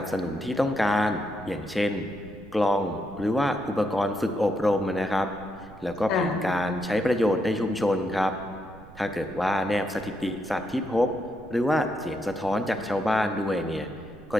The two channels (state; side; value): noise; right; rumble, 21 dB below the sound